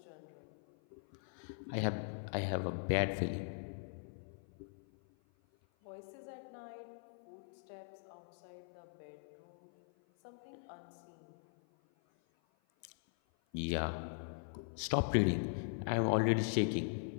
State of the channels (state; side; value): silent; right; 51 dB below the other